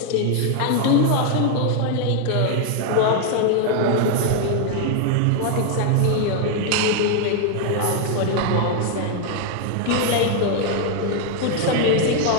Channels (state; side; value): different; both; correlation 0.00